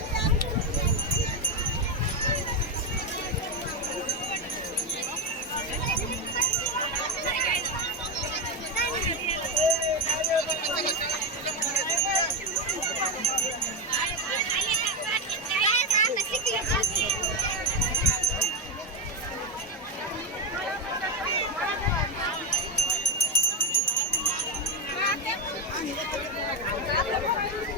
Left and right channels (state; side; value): normal; both; correlation 0.09